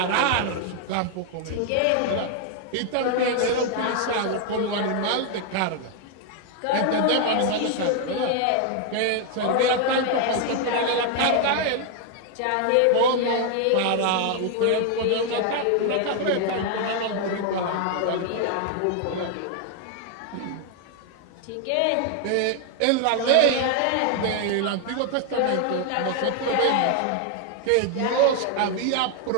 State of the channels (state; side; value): different; both; correlation 0.00